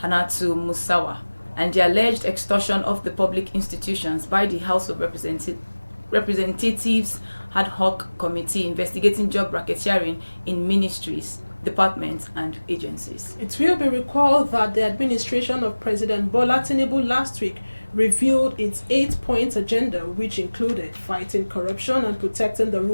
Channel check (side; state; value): both; inverted; correlation -1.00